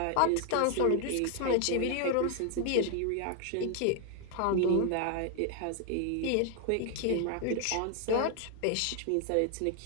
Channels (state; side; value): different; both; correlation 0.00